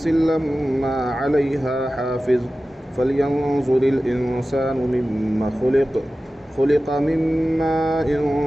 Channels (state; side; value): normal; both; correlation 0.95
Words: لما عليها حافظ فلينظر الإنسان مما خلق من ماء